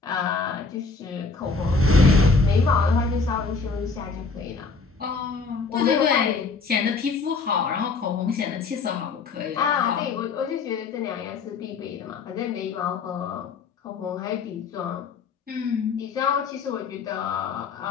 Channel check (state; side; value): quieter; right; 4.4 dB